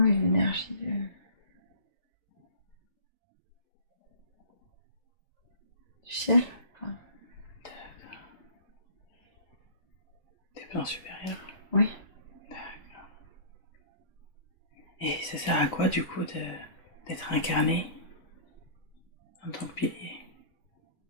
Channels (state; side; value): late; right; 1.9 ms